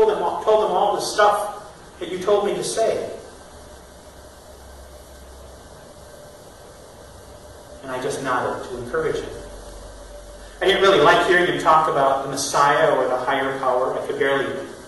them all the stuff that you told me to say." And I just nodded to encourage him. I didn't really like hearing him talk about the Messiah or the higher power. I could barely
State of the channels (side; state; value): both; identical; correlation 1.00